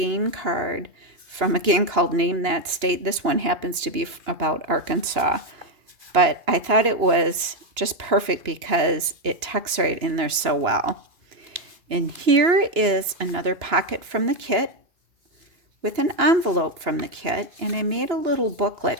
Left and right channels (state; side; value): late; left; 2.9 ms